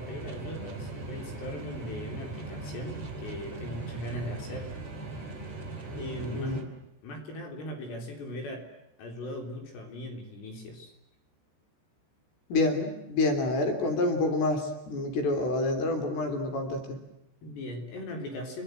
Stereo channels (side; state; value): right; late; 14 ms